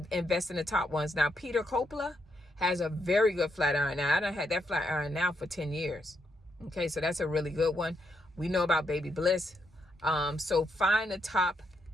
invest in the top ones. Now, Peter Coppola has a very good flat iron. Now, I done had that flat iron now for 10 years. Okay, so that's a really good one. We know about Baby Bliss. So find the top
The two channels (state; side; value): normal; both; correlation 0.79